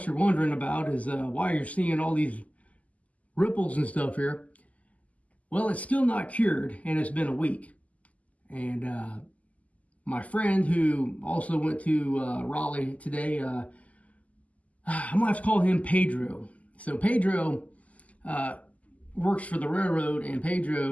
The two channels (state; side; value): late; right; 0.072 ms